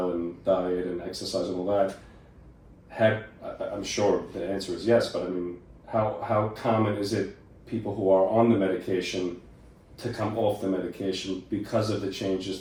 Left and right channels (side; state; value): both; identical; correlation 1.00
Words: and diet and exercise and all that. I'm sure the answer is yes, but I mean, how common is it people who are on the medication to come off the medication because of the changes